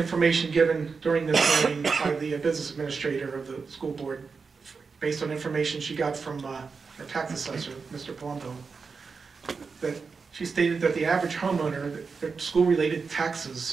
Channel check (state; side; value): quieter; left; 5.0 dB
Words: given during this hearing by the business administrator of the school board, based on information she got from our tax assessor, Mr. Palumbo, that she stated that the average homeowner, their school-related